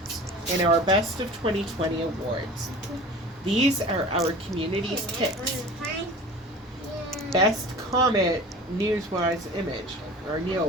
in our Best of 2020 awards. These are our community's picks. Best Comet Neowise image, or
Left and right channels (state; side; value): normal; both; correlation 0.39